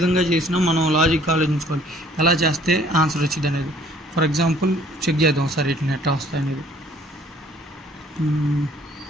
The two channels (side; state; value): both; normal; correlation 0.58